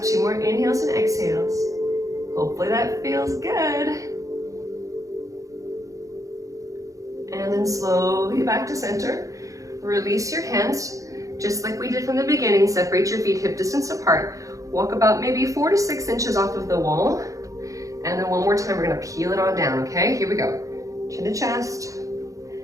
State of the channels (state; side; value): late; left; 0.16 ms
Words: 2 more inhales and exhales. Hopefully that feels good. And then slowly back to center. Release your hands, just like we did from the beginning. Separate your feet hip distance apart. Walk about maybe 4 to 6 inches off of the wall. And then one more time, we're gonna peel it on down, okay? Here we go. Chin to chest.